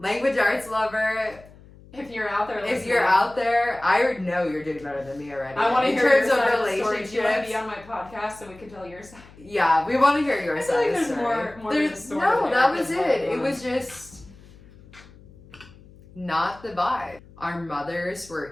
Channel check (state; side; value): noise; left; hum, 23 dB below the sound